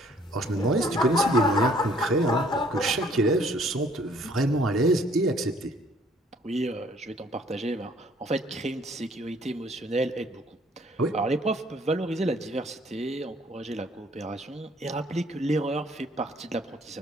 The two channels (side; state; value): both; normal; correlation 0.60